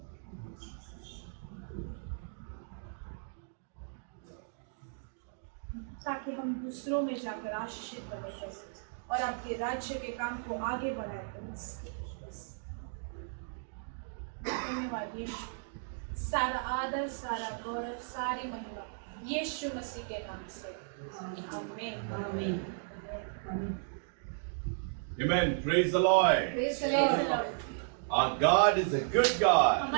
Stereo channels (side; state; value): left; silent; digital silence